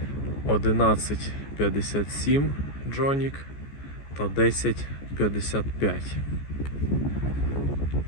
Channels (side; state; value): right; late; 14 ms